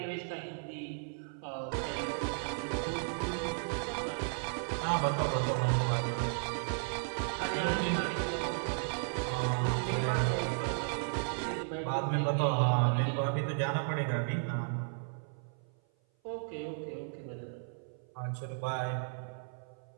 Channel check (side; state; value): left; silent; 55 dB below the other